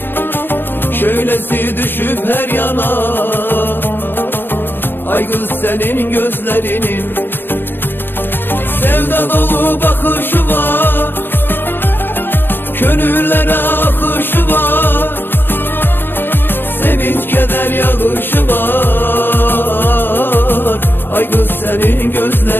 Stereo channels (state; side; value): late; right; 0.099 ms